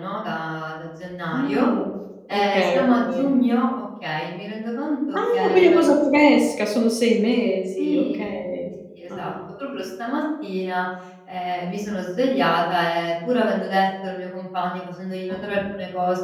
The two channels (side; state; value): both; identical; correlation 1.00